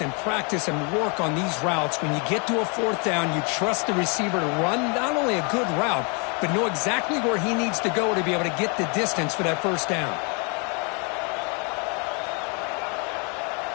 practice and work on these routes. When you get to a fourth down, you trust the receiver to run not only a good route, but know exactly where he needs to go to be able to get the distance for that first down.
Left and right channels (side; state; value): right; quieter; 35.3 dB